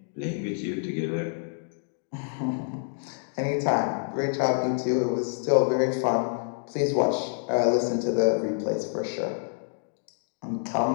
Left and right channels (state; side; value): silent; right; digital silence